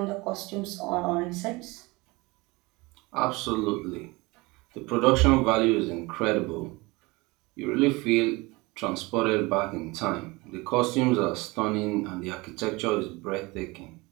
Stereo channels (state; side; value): quieter; left; 23.7 dB